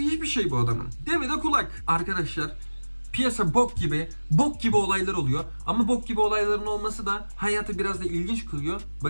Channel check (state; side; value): inverted; both; correlation -1.00